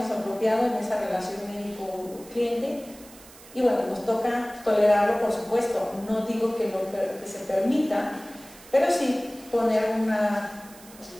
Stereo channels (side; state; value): right; noise; hiss, 21 dB below the sound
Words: apropiado en esa relación médico-cliente, y bueno, nos toca tolerarlo, por supuesto. No digo que se permita, pero sí poner